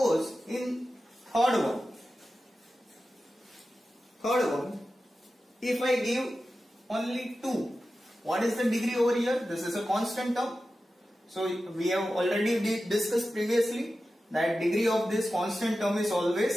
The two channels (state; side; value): normal; both; correlation 0.93